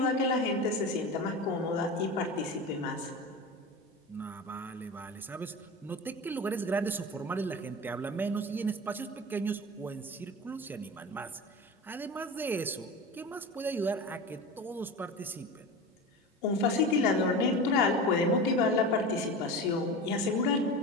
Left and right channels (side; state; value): both; normal; correlation 0.29